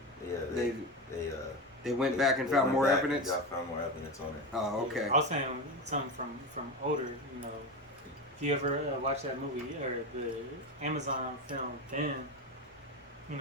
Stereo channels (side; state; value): both; normal; correlation 0.20